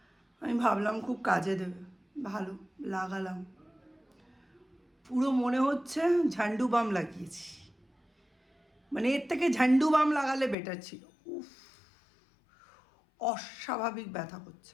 আমি ভাবলাম খুব কাজে দেবে, ভালো লাগালাম। পুরো মনে হচ্ছে ঝান্ডু বাম লাগিয়েছি। মানে এর থেকে ঝান্ডু বাম লাগালে বেটার ছিল। উফ, অস্বাভাবিক ব্যথা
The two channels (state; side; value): drops out; right; at 10.6 s